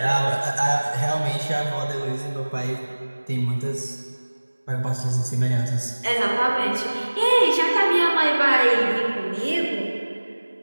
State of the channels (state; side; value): inverted; both; correlation -1.00